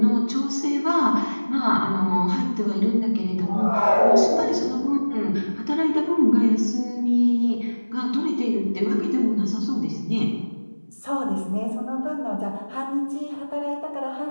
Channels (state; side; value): inverted; both; correlation -1.00